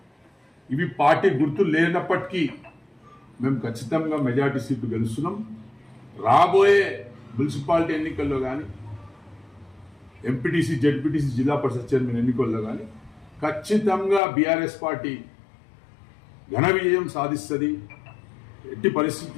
ఇవి పార్టీ గుర్తు లేనప్పటికీ మేము ఖచ్చితంగా మెజార్టీ సీట్లు గెలుస్తున్నాం. రాబోయే మున్సిపాలిటీ ఎన్నికల్లో కానీ ఎంపీటీసీ జెడ్పీటీసీ జిల్లా పరిషత్ చైర్మన్ ఎన్నికల్లో కానీ ఖచ్చితంగా బీఆర్ఎస్ పార్టీ ఘన విజయం సాధిస్తుంది. ఎట్టి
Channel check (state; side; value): drops out; right; at 14.2 s